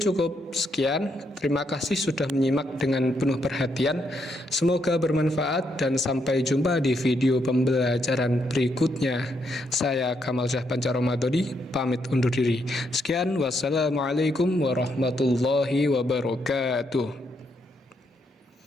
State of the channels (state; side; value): normal; both; correlation 0.77